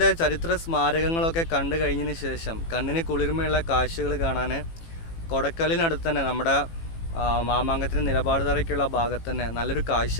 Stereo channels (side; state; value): right; late; 18 ms